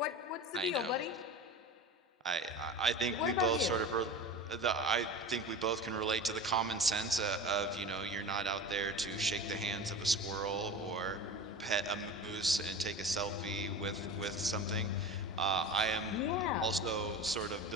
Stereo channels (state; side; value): normal; both; correlation 0.33